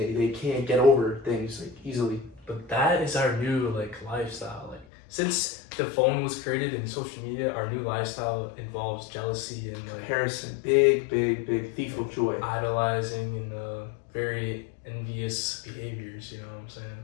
can't get over things like easily. But that is our new like lifestyle. Like since the phone was created and social media, our new lifestyle involves jealousy and like comparison, big thief of joy, idolizing and very envious behaviors. You know what I'm saying?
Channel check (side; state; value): right; drops out; at 4.9 s